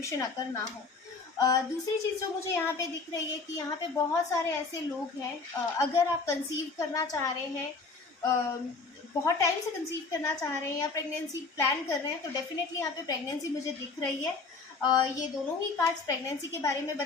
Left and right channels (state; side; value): quieter; right; 4.2 dB